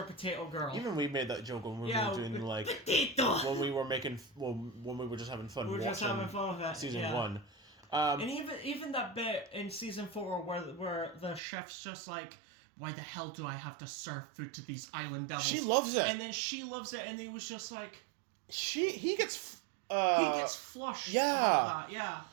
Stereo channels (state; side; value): drops out; left; at 11.4 s